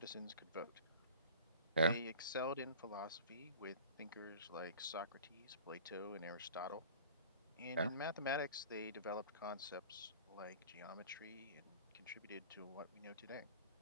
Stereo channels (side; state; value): both; inverted; correlation -0.42